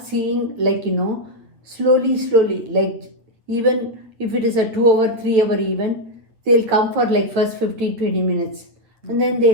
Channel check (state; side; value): late; left; 8.8 ms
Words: seeing slowly, like even if it is a 2 hour, 3 hour event, they'll come for first 15-20 minutes and then they